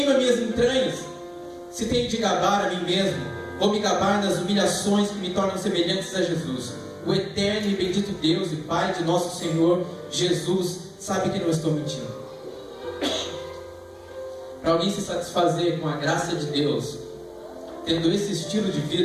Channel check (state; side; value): identical; both; correlation 1.00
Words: minhas entranhas. Se tenho de gabar a mim mesmo, Vou me gabar nas humilhações que me tornam semelhantes a Jesus. O eterno e bendito Deus e Pai de nosso Senhor Jesus sabe que não estou mentindo. Para alguém se satisfazer com a graça de Deus, tendo esse estilo de